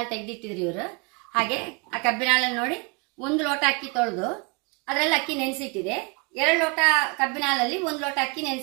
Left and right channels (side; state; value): left; quieter; 30.8 dB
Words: ತೆಗೆದಿಟ್ಟಿದ್ರು ಇವರು. ಹಾಗೆ ಆ ಕಬ್ಬಿನಾಲ ನೋಡಿ 1 ಲೋಟ ಅಕ್ಕಿ ತೊಳೆದು ಅದರಲ್ಲಿ ಅಕ್ಕಿ ನೆನೆಸಿಟ್ಟಿದೆ. 2 ಲೋಟ ಕಬ್ಬಿನಾಲಲ್ಲಿ 1 ಲೋಟ ಅಕ್ಕಿ